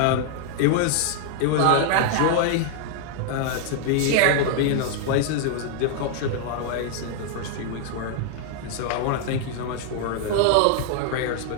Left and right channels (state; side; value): different; both; correlation 0.00